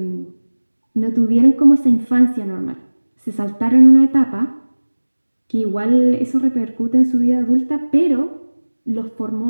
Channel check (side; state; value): both; inverted; correlation -1.00